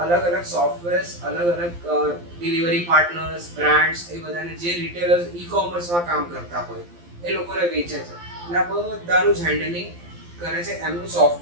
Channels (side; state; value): left; late; 12 ms